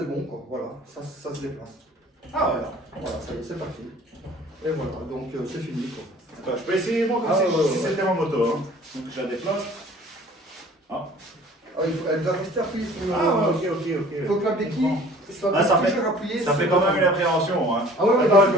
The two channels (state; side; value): normal; both; correlation 0.50